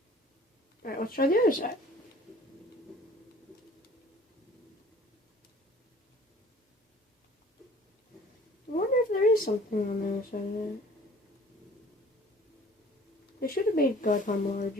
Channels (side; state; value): both; normal; correlation 0.51